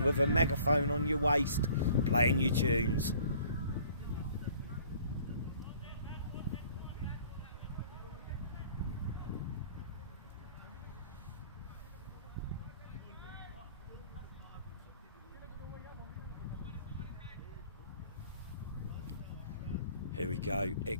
with a megaphone on your waist, playing your tunes. Here we go,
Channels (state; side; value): inverted; both; correlation -0.53